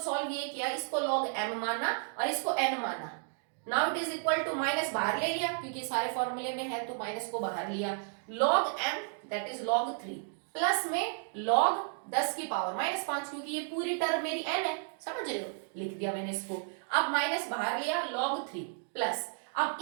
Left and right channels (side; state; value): left; silent; 56 dB below the other